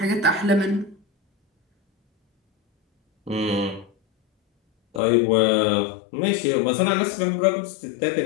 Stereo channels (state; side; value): drops out; right; at 5.0 s